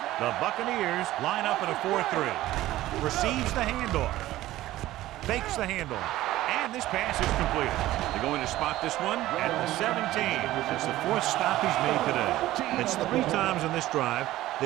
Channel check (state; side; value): quieter; left; 15.6 dB